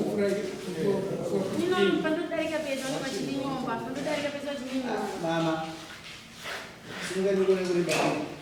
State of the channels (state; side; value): identical; both; correlation 1.00